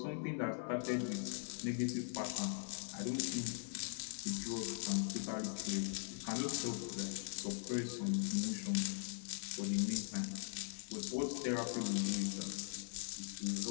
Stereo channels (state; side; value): silent; right; 50 dB below the other